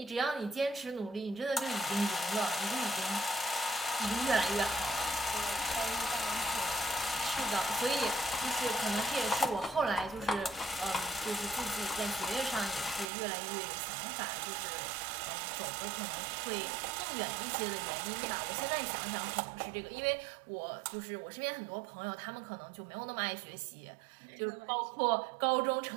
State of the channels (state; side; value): drops out; left; at 13.1 s